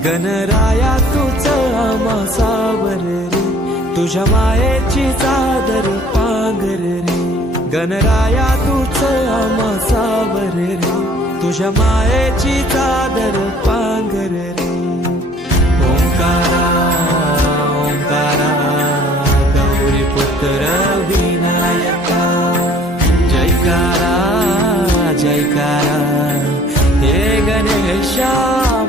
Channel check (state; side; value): normal; both; correlation 0.55